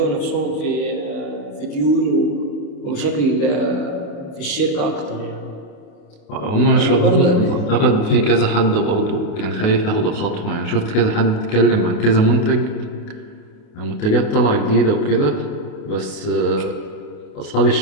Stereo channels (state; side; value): late; right; 28 ms